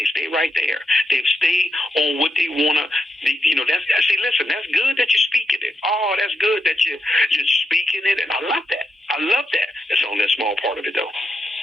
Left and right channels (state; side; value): normal; both; correlation 0.83